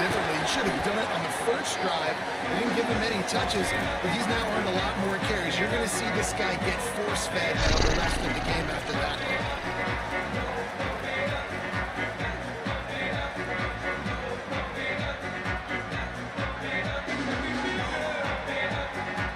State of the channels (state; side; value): identical; both; correlation 1.00